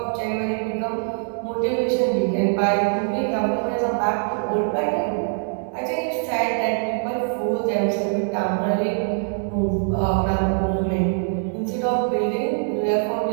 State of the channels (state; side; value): silent; left; 63 dB below the other